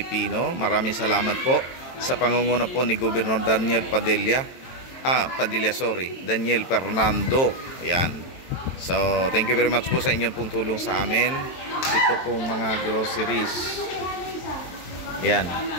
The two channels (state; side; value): late; right; 23 ms